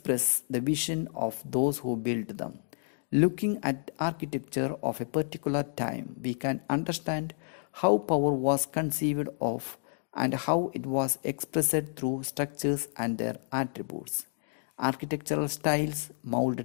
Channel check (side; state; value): right; silent; digital silence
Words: the vision of those who built them. Looking at architecture of a particular time, we can understand how power was conceived of and how it was expressed through structures and their attributes. Architectural styles mold